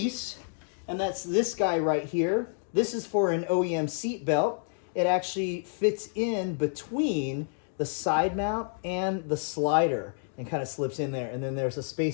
and that's this guy right here. This is for an OEM seat belt. It actually fits in between the side mount and the slider and kind of slips in there. And then there's a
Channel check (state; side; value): silent; right; digital silence